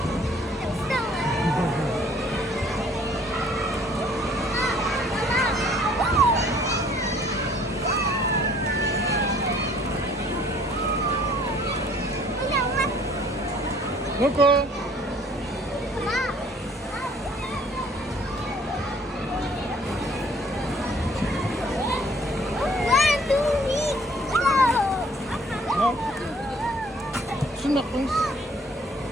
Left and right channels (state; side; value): normal; both; correlation 0.58